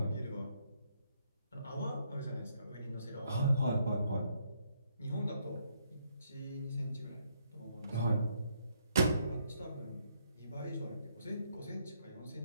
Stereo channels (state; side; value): inverted; both; correlation -0.72